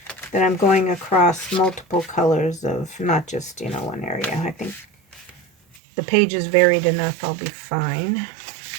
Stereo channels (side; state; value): left; drops out; at 5.8 s